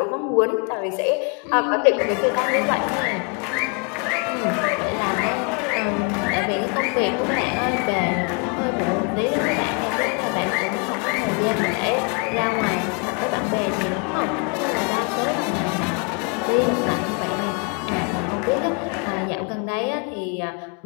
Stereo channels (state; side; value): quieter; right; 36.0 dB